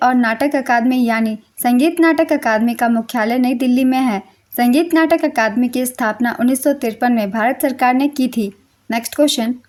और नाटक अकादमी यानी संगीत नाटक अकादमी का मुख्यालय नई दिल्ली में है। संगीत नाटक अकादमी की स्थापना 1953 में भारत सरकार ने की थी। नेक्स्ट क्वेश्चन,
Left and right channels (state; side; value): identical; both; correlation 1.00